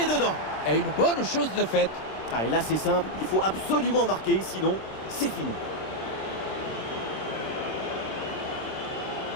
dedans. Et une bonne chose de faite. Ah, et là, c'est simple. Il faut absolument marquer, sinon, c'est fini.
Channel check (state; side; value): late; right; 26 ms